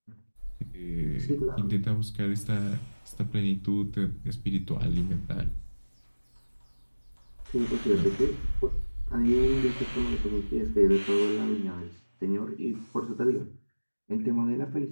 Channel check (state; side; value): inverted; both; correlation -1.00